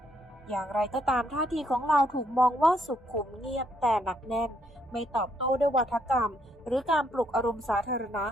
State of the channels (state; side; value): normal; both; correlation 0.73